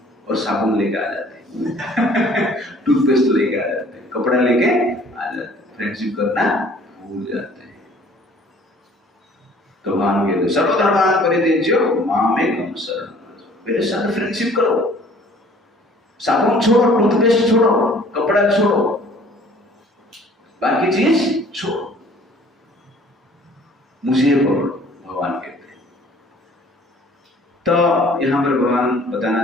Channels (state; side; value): normal; both; correlation 0.54